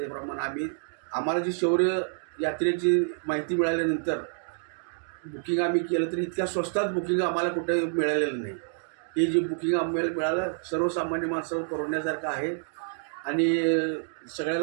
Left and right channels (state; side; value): silent; left; digital silence